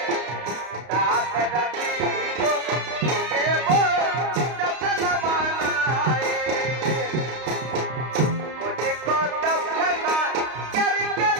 साथ रखे को के वो जसन मनाए मुझे को तब पता करके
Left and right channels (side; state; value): left; late; 32 ms